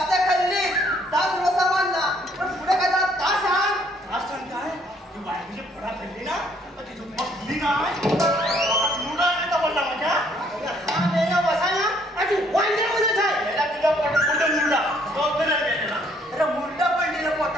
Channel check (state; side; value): normal; both; correlation 0.65